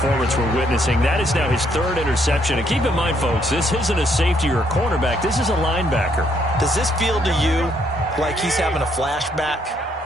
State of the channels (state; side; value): normal; both; correlation 0.71